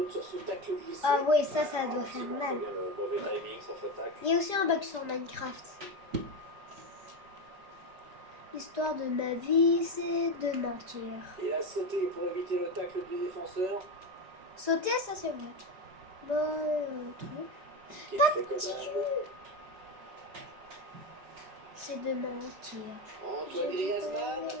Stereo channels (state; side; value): late; left; 4.9 ms